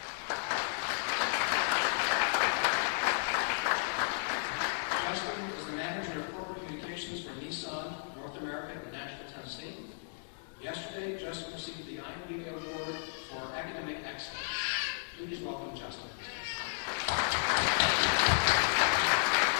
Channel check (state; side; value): silent; right; digital silence